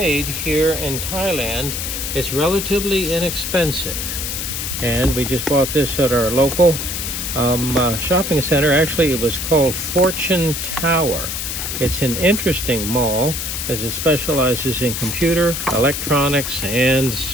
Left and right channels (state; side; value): noise; left; hiss, 4 dB below the sound